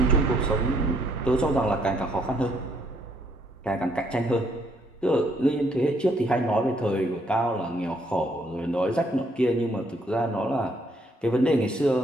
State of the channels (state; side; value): normal; both; correlation 0.70